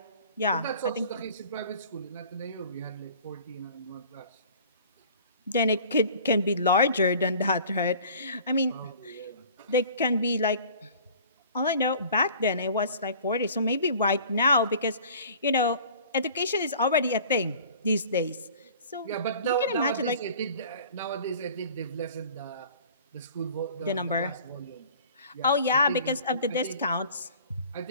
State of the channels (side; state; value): both; inverted; correlation -0.47